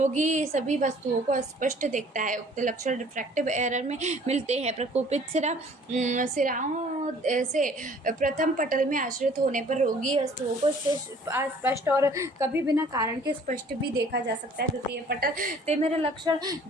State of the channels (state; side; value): normal; both; correlation 0.54